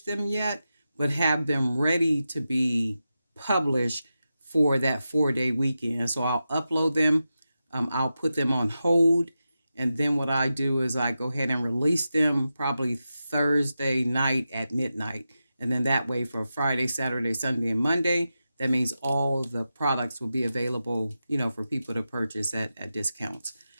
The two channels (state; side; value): inverted; both; correlation -0.91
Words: them yet, but have them ready to be published for that 4-day weekend. So I'll upload them, I'll put them on hold, and then what I do is I go ahead and release them probably Thursday night at midnight. And then that way for Friday, Saturday, Sunday, and Monday, that means all the products will be available, for people to purchase at discounts.